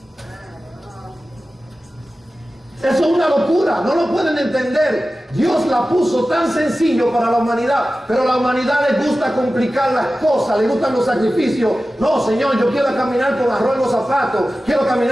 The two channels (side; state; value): both; normal; correlation 0.95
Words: Eso es una locura, no lo pueden entender. Dios la puso tan sencillo para la humanidad, pero a la humanidad le gusta complicar las cosas, le gustan los sacrificios. No, Señor, yo quiero caminar con arroz en los zapatos, quiero